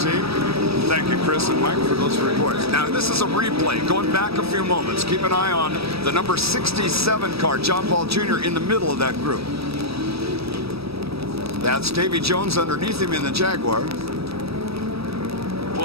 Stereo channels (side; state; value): left; late; 0.77 ms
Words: Thank you, Chris and Mike, for those reports. Now, this is a replay going back a few moments. Keep an eye on the number 67 car, John Paul Jr., in the middle of that group. That's Davy Jones underneath him in the Jaguar.